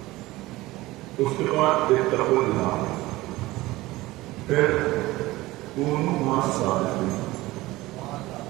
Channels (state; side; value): quieter; left; 18.8 dB